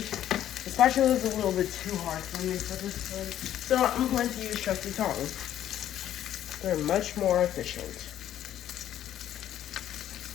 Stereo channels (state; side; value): quieter; right; 11.5 dB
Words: the spatula is a little bit too hard for me for this one, so I'm going to use trusty tongs. They're much more efficient.